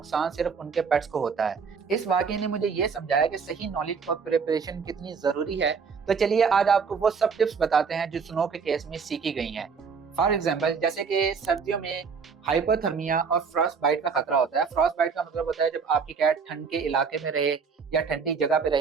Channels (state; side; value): quieter; left; 5.7 dB